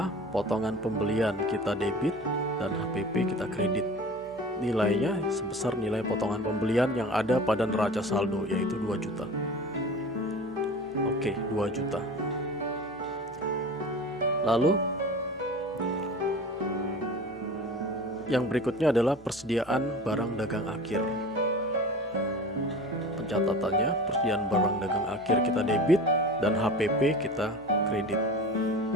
potongan pembelian kita debit dan HPP kita kredit. Nilainya sebesar nilai potongan pembelian yang ada pada neraca saldo, yaitu 2 juta. Oke, 2 juta. Lalu yang berikutnya adalah persediaan barang dagang akhir. Pencatatannya, persediaan barang dagang akhir kita debit dan HPP kita kredit.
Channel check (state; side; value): normal; both; correlation 0.37